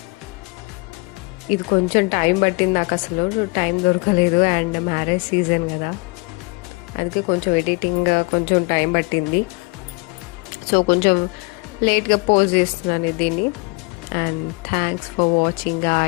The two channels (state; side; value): quieter; right; 29.8 dB